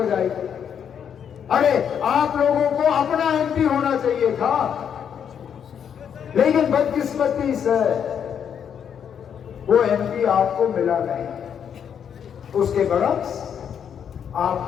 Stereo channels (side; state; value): right; quieter; 8.1 dB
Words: अरे आप लोगों को अपना MP होना चाहिए था, लेकिन बदकिस्मती से वो MP आपको मिला नहीं। उसके बरक्स